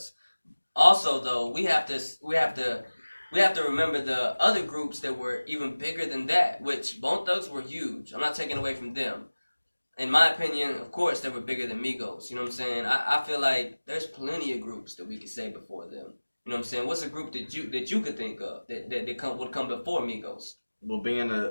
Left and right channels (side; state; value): both; inverted; correlation -1.00